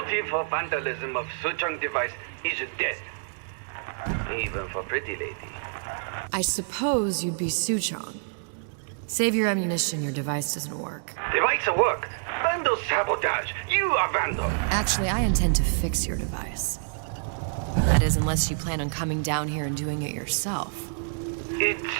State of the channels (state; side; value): silent; left; digital silence